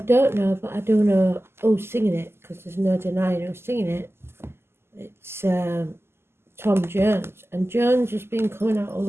don't know, but I do know who's singing it, because there's no denying who's singing it. It's Tom Jones, and Jones has been coming out a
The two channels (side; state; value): left; late; 0.12 ms